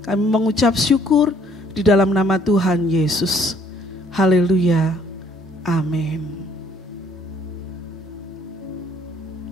Kami mengucap syukur di dalam nama Tuhan Yesus. Haleluya. Amin.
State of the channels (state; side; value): normal; both; correlation 0.62